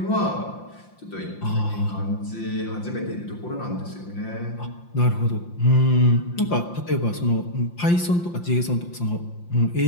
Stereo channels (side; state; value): right; late; 5.8 ms